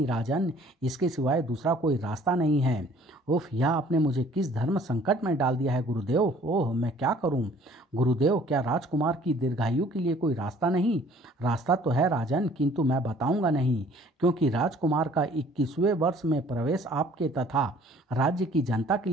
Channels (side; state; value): both; normal; correlation 0.55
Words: राजन, इसके सिवाय दूसरा कोई रास्ता नहीं है। उफ, यह आपने मुझे किस धर्म संकट में डाल दिया है गुरुदेव। ओह, मैं क्या करूं? गुरुदेव, क्या राजकुमार की दीर्घायु के लिए कोई रास्ता नहीं? रास्ता तो है राजन, किंतु मैं बताऊंगा नहीं, क्योंकि राजकुमार का 21वें वर्ष में प्रवेश आपके तथा राज्य की जनता के